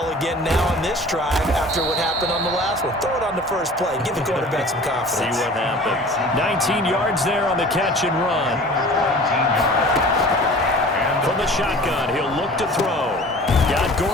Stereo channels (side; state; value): both; normal; correlation 0.44